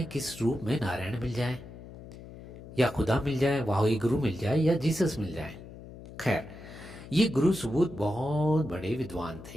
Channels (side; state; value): left; noise; hum, 15 dB below the sound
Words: किस रूप में नारायण मिल जाए या खुदा मिल जाए, वाही गुरु मिल जाए या जीसस मिल जाए। खैर, ये गुरु सुबोध बहुत बड़े विद्वान